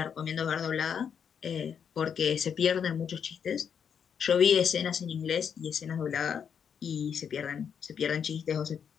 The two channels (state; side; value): quieter; right; 7.5 dB